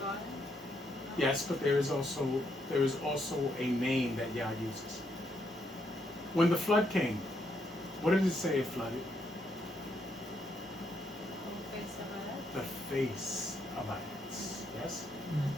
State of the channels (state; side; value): normal; both; correlation 0.76